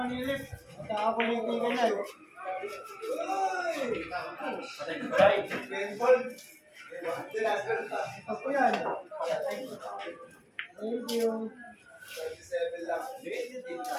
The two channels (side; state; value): both; identical; correlation 1.00